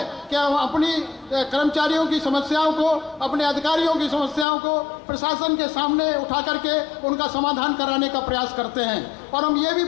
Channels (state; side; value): drops out; right; at 4.5 s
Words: कि हम अपनी कर्मचारियों की समस्याओं को, अपने अधिकारियों की समस्याओं को प्रशासन के सामने उठा करके उनका समाधान कराने का प्रयास करते हैं। और हम ये भी